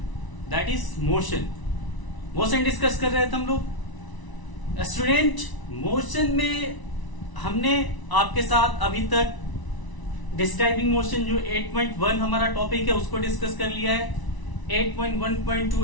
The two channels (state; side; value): late; right; 1.0 ms